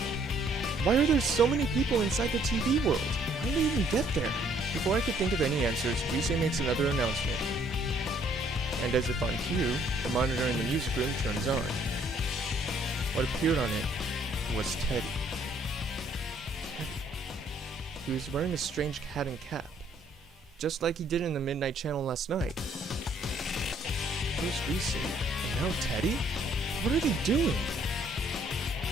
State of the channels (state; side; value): normal; both; correlation 0.64